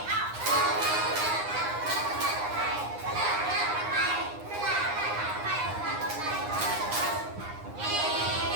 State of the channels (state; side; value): late; left; 9.7 ms